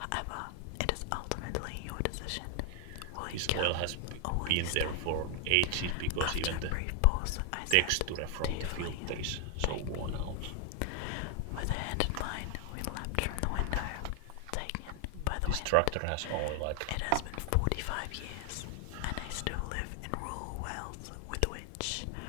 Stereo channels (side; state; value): both; different; correlation 0.00